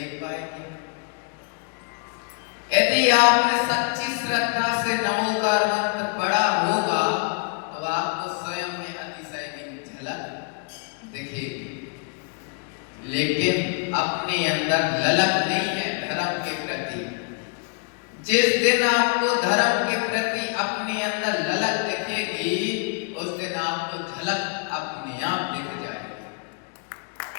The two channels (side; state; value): right; quieter; 37.2 dB